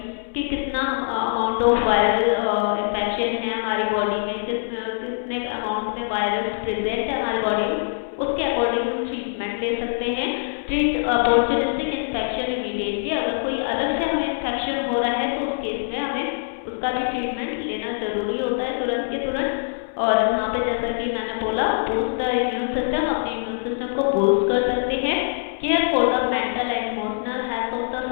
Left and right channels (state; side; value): silent; right; 60 dB below the other